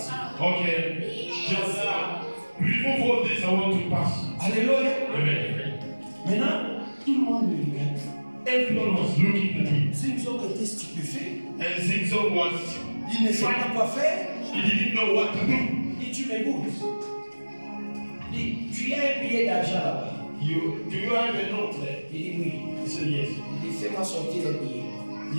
Okay, just remove all this. I want to pass. Alléluia. Amen. Maintenant, tout le monde le regarde. Everyone was looking at him. Zinzo était stupéfait. And Zinzo was, Il ne savait pas quoi faire. he didn't know what to do. Il dit tu m'écoutes. Il dit tu as un billet d'argent là-bas. Do you have a note there? Il dit oui. He said yes. Il dit fais-moi sortir le billet.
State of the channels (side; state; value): both; inverted; correlation -1.00